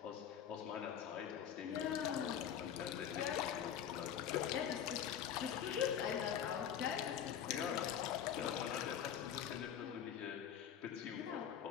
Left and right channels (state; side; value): quieter; right; 9.1 dB